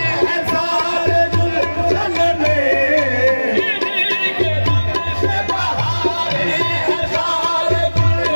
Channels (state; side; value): inverted; both; correlation -1.00